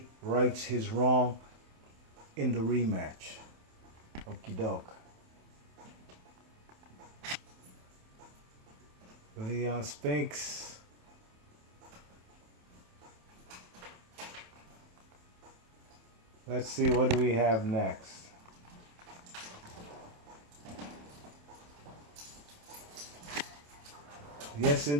rights his wrong in the rematch. Okie doke. Leon Spinks. Let's see, what do we have next? Yes,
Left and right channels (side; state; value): left; late; 27 ms